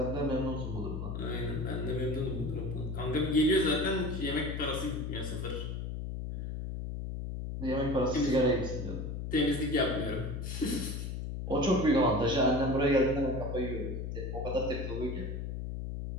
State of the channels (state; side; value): noise; left; hum, 5 dB below the sound